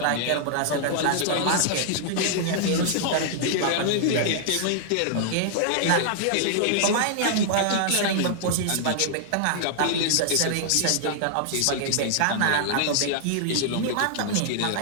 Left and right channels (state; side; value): different; both; correlation -0.01